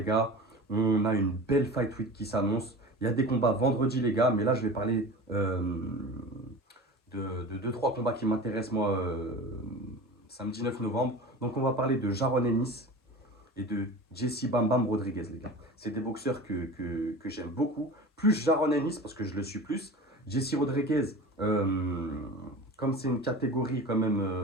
gars. On a une belle Fight Week qui s'annonce. Il y a des combats vendredi les gars, mais là je vais parler de 2-3 combats qui m'intéressent moi samedi 9 novembre. Donc on va parler de Jaron Ennis et de Jesse Bam Bam Rodriguez les gars. C'est des boxeurs que j'aime beaucoup. Plus Jaron Ennis parce que je le suis plus. Jesse Rodriguez, comme c'est une catégorie quand même,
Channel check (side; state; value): both; normal; correlation 0.34